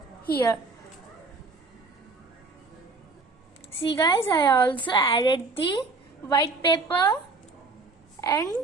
here. See guys, I also added the white paper and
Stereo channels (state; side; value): quieter; left; 3.7 dB